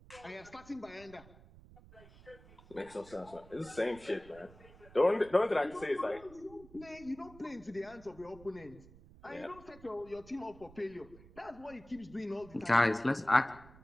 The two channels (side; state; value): right; noise; rumble, 21 dB below the sound